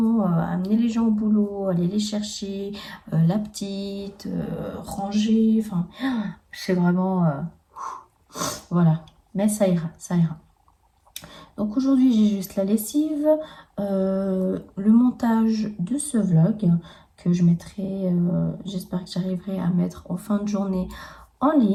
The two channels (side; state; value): both; identical; correlation 1.00